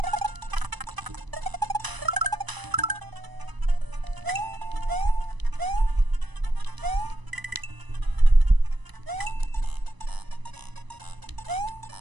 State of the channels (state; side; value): late; left; 1.0 ms